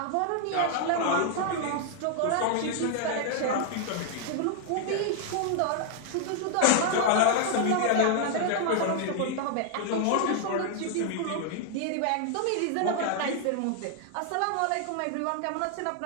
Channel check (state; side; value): different; both; correlation 0.00